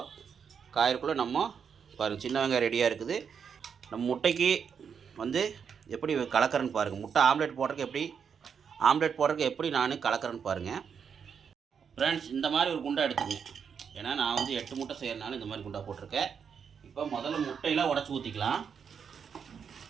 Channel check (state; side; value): quieter; left; 6.9 dB